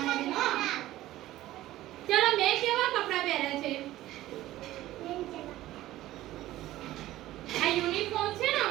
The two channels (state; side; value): quieter; left; 15.4 dB